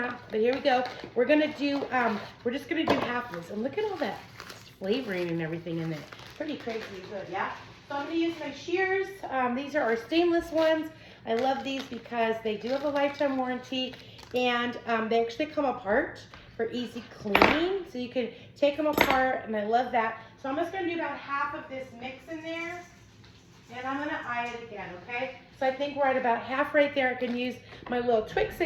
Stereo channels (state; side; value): identical; both; correlation 1.00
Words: but here we go. We're gonna do, we're just gonna do half of this. And look at all that flavoring and everything in there. Pretty crazy good, yeah? So I'm gonna use my shears. These are our stainless ones. I love these because they do have a lifetime warranty, and they actually come apart for easy cleaning. So you can take them apart, and I love that. So I'm just gonna do about half of this mix in there, and I'm gonna eye it again, okay? So I think we're at about half right there. I can use my little